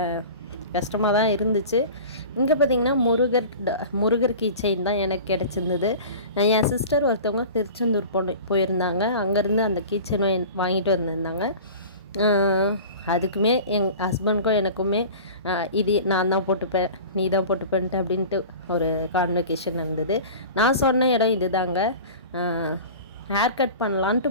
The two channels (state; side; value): inverted; both; correlation -0.38